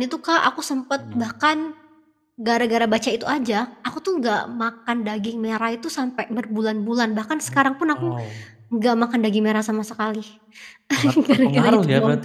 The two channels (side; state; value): both; identical; correlation 1.00